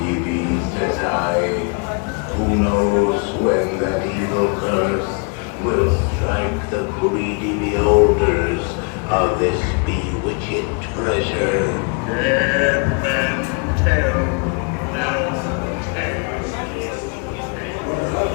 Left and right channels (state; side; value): quieter; right; 35.2 dB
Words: ye be, says I. Who knows when that evil curse will strike the greedy beholders of this bewitched treasure. Dead men tell no tales.